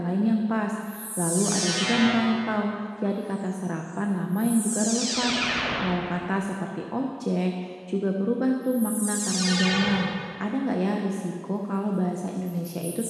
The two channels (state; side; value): identical; both; correlation 1.00